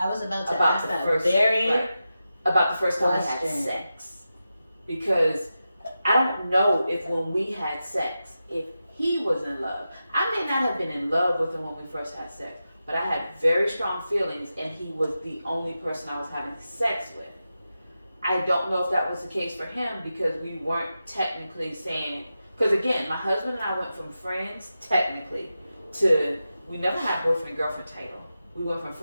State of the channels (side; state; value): both; inverted; correlation -0.91